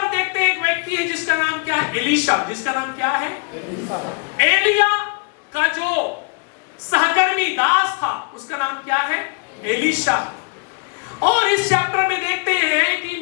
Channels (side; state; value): right; quieter; 37.0 dB